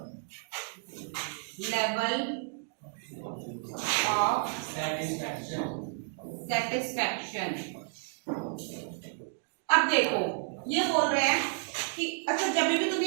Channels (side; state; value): left; silent; 57 dB below the other